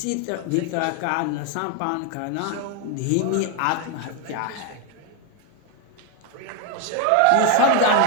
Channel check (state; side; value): different; both; correlation 0.01